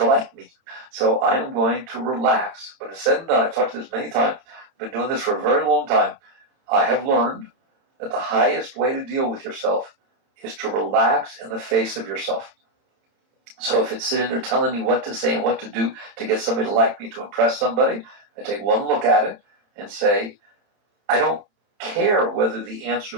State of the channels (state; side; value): late; left; 31 ms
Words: like me. So I am going to relax. When it's said and done, I've talked to this many times, I've been doing this for a very long time. I have learned that the highest way to deal with yourself is to relax in the face of yourself. So if it's sitting there telling me what to say and what to do to get somebody to like me, to impress somebody, I take one look at it and say, I don't care whether the answer